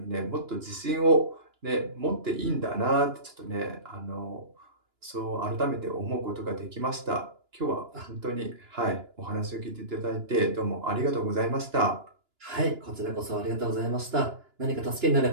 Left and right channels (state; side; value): late; left; 2.9 ms